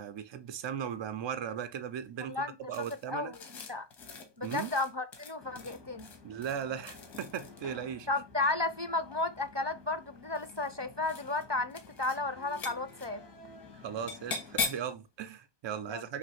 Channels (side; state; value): left; late; 1.2 ms